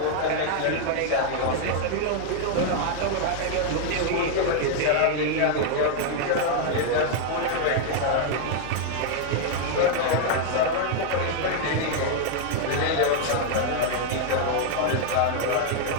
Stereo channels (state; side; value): different; both; correlation 0.00